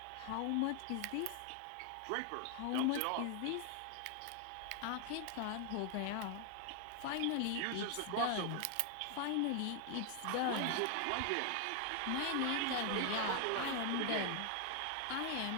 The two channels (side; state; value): both; different; correlation 0.00